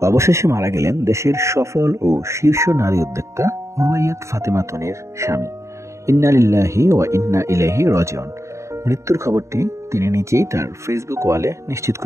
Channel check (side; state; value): left; late; 0.14 ms